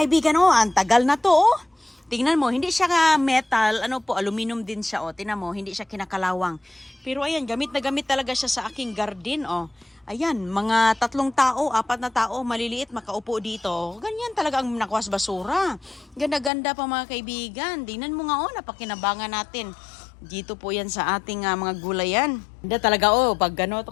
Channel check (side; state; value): right; drops out; at 16.5 s